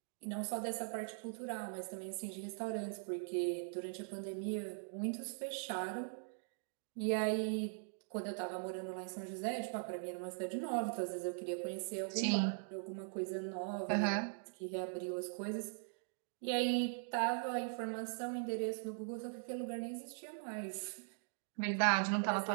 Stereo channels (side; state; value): left; silent; digital silence